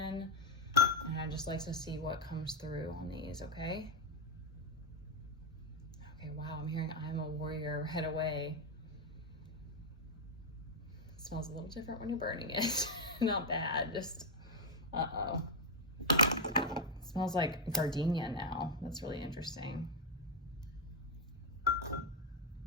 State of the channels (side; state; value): both; normal; correlation 0.04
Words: And I just like to see what comes through on these. Okay. Okay, wow, I'm hearing I'm a warrior, head away. It smells a little different when you're burning it. Not bad, just, uh-oh. It smells like gardenia now. That's really interesting.